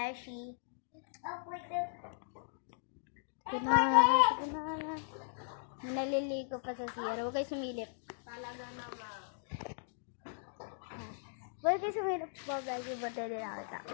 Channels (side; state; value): right; silent; digital silence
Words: Kunana. Naliligo pa sa CR. Huwag kayo sumilip. Talaga naman. Huwag kayo sumilip mga beshi. Bante din nakita.